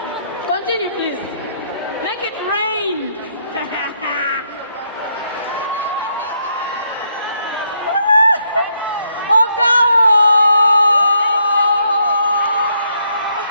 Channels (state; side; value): inverted; both; correlation -0.74